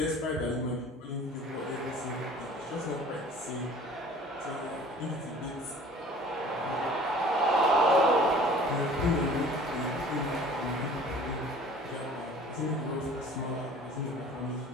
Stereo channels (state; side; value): normal; both; correlation 0.48